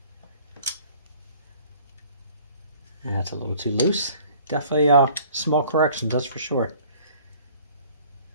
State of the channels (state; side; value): inverted; both; correlation -0.51